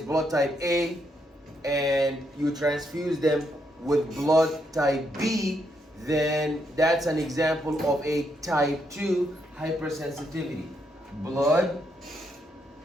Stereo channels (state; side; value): normal; both; correlation 0.77